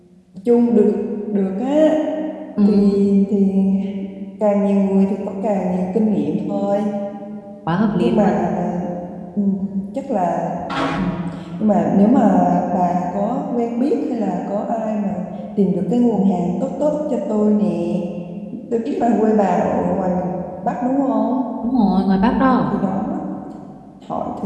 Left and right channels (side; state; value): both; identical; correlation 1.00